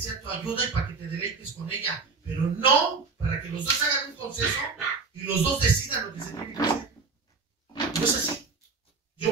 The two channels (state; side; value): quieter; left; 4.7 dB